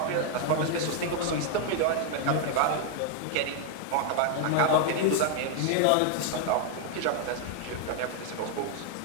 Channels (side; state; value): both; different; correlation 0.00